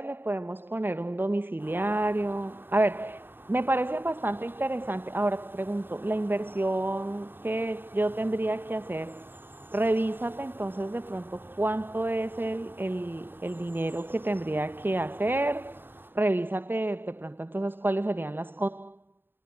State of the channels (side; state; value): left; late; 0.099 ms